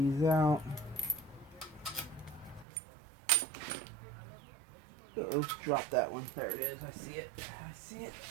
out. Uh-oh, drop that one. There it is. I see it. I see it.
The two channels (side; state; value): left; drops out; at 2.7 s